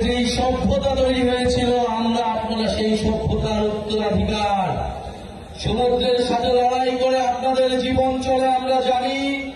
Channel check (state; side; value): identical; both; correlation 1.00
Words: যেই সভ্যতা তৈরি হয়েছিল, আপনারা সেই সভ্যতার উত্তরাধিকার। সমুদ্রের সাথে লড়াই করে আপনাদের জীবন চলে আমরা জানি।